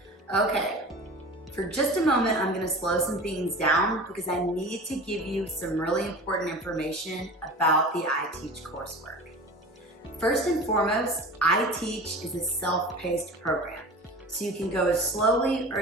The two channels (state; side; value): normal; both; correlation 0.36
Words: Okay. For just a moment, I'm going to slow some things down because I need to give you some really important information about the iTeach coursework. First and foremost, iTeach is a self-paced program, so you can go as slowly or